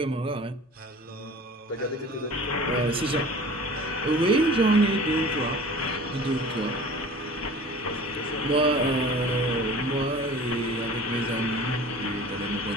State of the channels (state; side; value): normal; both; correlation 0.42